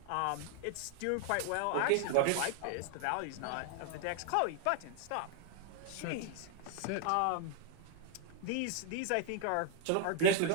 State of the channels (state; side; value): different; both; correlation 0.00